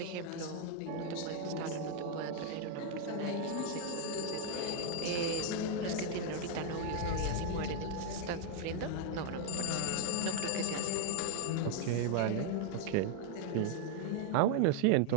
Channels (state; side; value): different; both; correlation 0.00